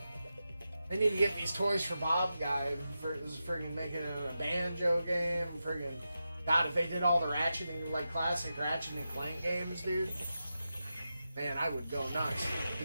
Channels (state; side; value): inverted; both; correlation -0.90